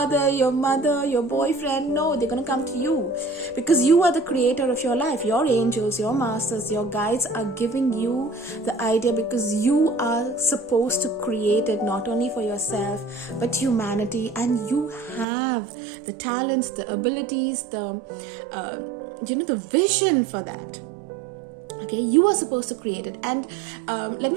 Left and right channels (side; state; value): left; drops out; at 15.2 s